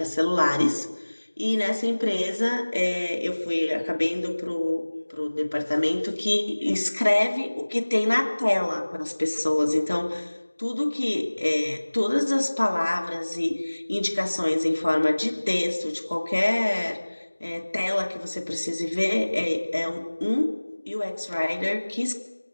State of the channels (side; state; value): both; inverted; correlation -1.00